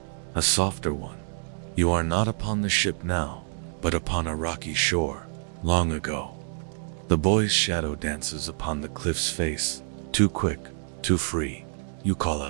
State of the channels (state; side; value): silent; left; digital silence